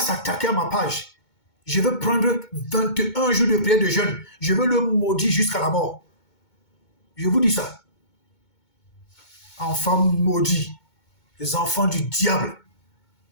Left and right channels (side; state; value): right; late; 2.2 ms